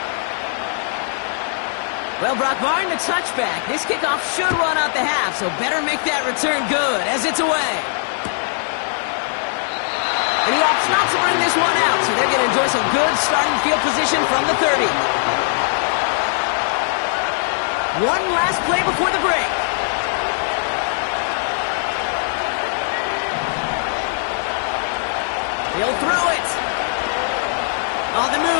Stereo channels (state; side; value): silent; right; digital silence